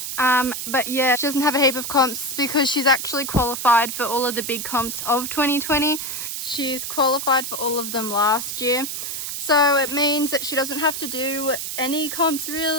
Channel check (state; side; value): noise; right; hiss, 5 dB below the sound